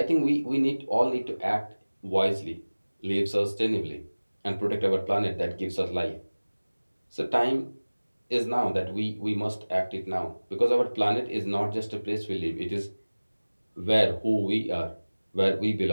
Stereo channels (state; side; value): inverted; both; correlation -1.00